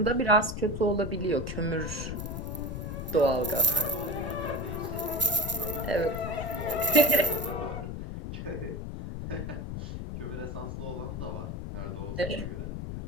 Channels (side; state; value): left; noise; rumble, 6 dB below the sound